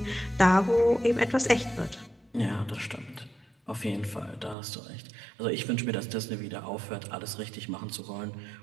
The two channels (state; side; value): drops out; left; at 4.5 s